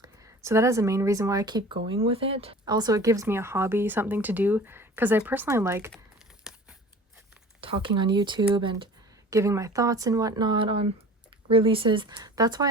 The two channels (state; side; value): normal; both; correlation 0.43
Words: So that is the main reason why I keep going with it. Also, it gives me a hobby, something to do, because I personally like talking on YouTube and giving my thoughts and whatnot on releases. That's